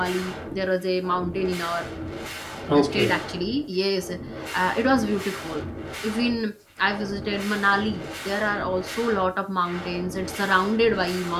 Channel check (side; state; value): both; identical; correlation 1.00